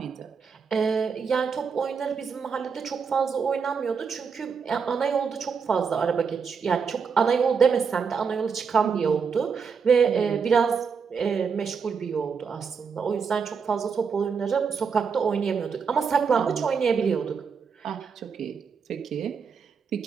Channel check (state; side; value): quieter; left; 6.0 dB